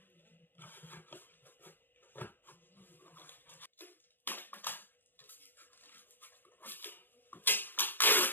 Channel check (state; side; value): late; right; 0.094 ms